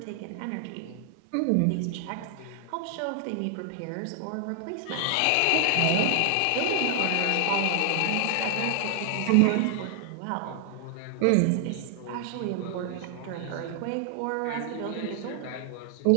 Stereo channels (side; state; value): both; different; correlation 0.00